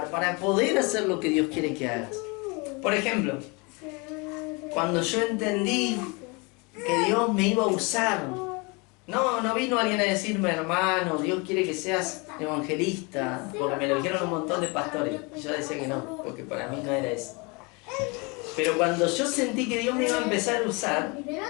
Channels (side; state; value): right; quieter; 29.1 dB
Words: para poder hacer lo que Dios quiere que hagas. Por ejemplo, cuando yo entendí que Dios me iba a usar, no vino alguien a decirme, hermano, Dios quiere que seas evangelista, porque me lo dijeron un montón de pastores. Y yo decía que no, porque para mí no era eso. Pero cuando yo sentí que Dios me iba a empezar a usar,